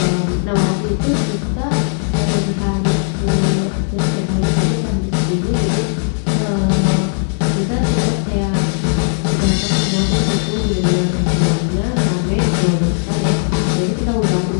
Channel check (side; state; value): right; silent; 66 dB below the other